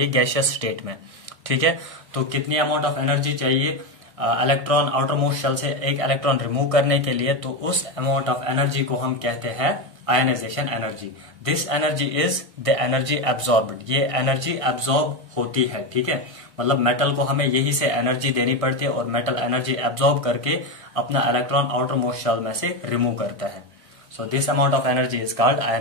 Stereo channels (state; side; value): late; left; 1.5 ms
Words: गैसियस स्टेट में, ठीक है। तो कितनी अमाउंट ऑफ एनर्जी चाहिए इलेक्ट्रॉन आउटर मोस्ट शेल से एक इलेक्ट्रॉन रिमूव करने के लिए? तो उस अमाउंट ऑफ एनर्जी को हम कहते हैं ionisation energy. This energy is the energy absorbed. ये एनर्जी एब्जॉर्ब होती है, ठीक है। मतलब मेटल को हमें यही से एनर्जी देनी पड़ती है और मेटल एनर्जी एब्जॉर्ब करके अपना इलेक्ट्रॉन आउटर मोस्ट शेल में से रिमूव करता है। So this amount of energy is called